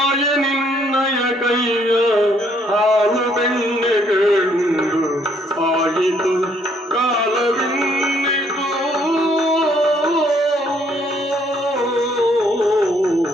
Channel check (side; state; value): both; normal; correlation 0.67